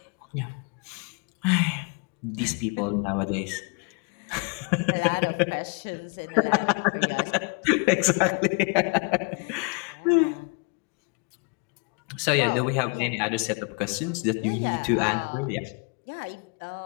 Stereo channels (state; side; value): quieter; right; 32.8 dB